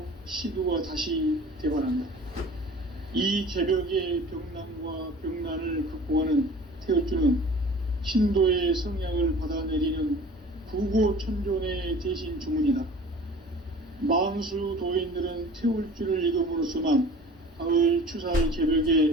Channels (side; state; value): both; normal; correlation 0.44